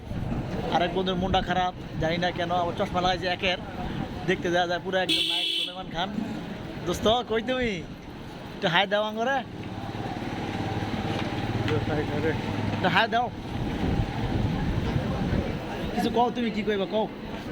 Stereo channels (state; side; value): identical; both; correlation 1.00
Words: আরেক বন্ধুর মনটা খারাপ, জানি না কেন, আমার চশমা লাগাইছে একের, দেখতে দেওয়া যায় পুরো একদম নায়ক সুলেমান খান। দোস্ত কই তুমি? একটু হাই দাও আঙ্গরে, একটু হাই দাও। কিছু কও, তুমি কি কইবা কও?